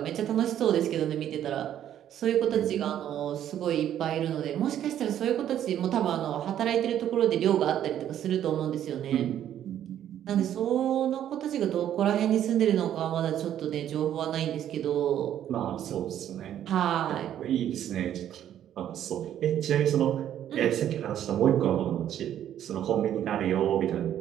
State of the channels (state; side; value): quieter; left; 10.8 dB